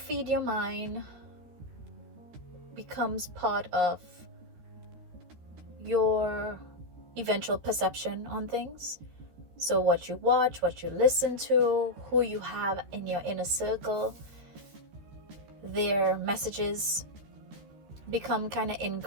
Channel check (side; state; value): left; late; 13 ms